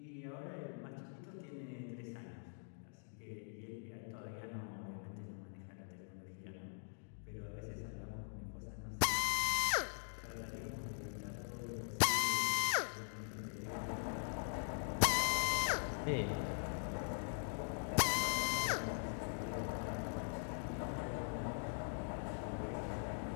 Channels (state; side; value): silent; right; digital silence